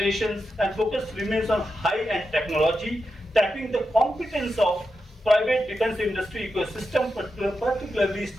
and focus remains on high-end technology, tapping the competence of private defense industry ecosystem, particularly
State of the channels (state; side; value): normal; both; correlation 0.88